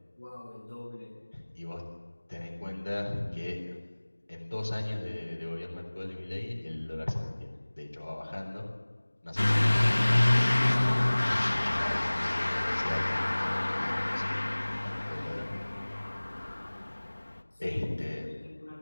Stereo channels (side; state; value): both; inverted; correlation -1.00